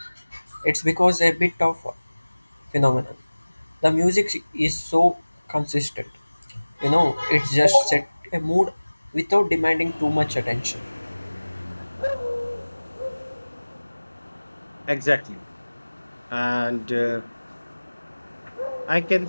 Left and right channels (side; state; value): both; inverted; correlation -1.00